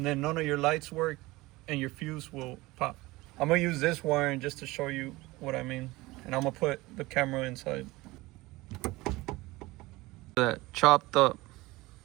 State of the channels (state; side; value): quieter; left; 20.6 dB